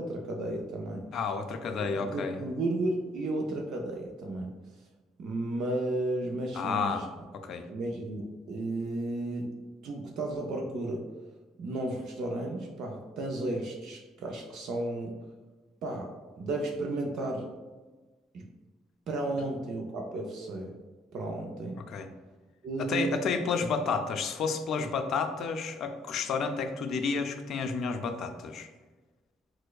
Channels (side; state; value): both; normal; correlation 0.64